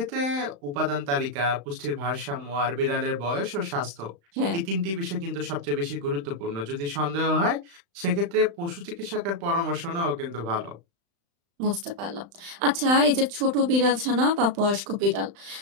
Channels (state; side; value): late; left; 35 ms